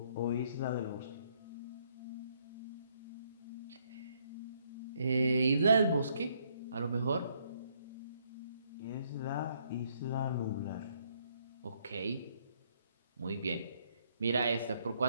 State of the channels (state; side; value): inverted; both; correlation -0.70